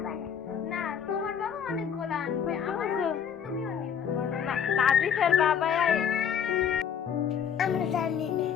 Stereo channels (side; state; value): right; quieter; 7.9 dB